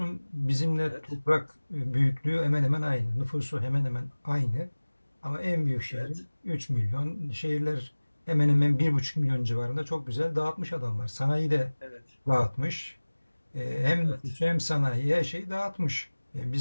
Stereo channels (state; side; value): inverted; both; correlation -1.00